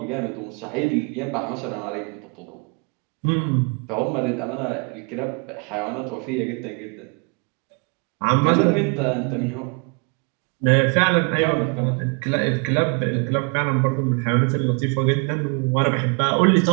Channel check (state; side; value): quieter; left; 34.0 dB